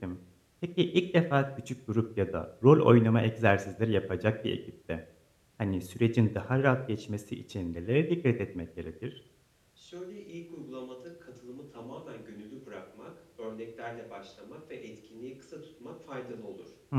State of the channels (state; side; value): identical; both; correlation 1.00